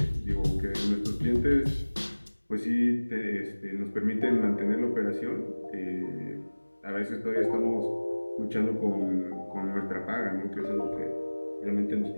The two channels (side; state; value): both; inverted; correlation -1.00